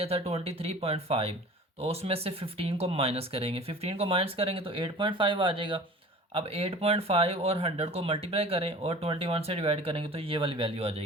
था 23.5, तो उसमें से 15 को माइनस करेंगे। 15 को माइनस करेंगे तो 8.5 आ जाएगा। अब 8.5 और 100 को मल्टीप्लाई करें और 21 से डिवाइड करेंगे तो ये वाली वैल्यू आ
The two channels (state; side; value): normal; both; correlation 0.43